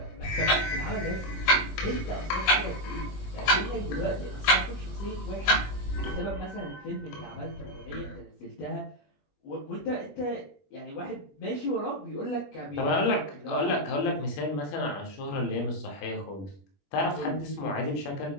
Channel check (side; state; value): right; late; 20 ms